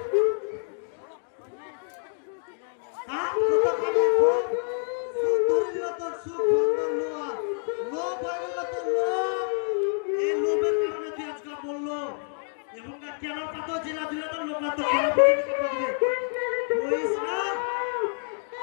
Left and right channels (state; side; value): silent; right; 60 dB below the other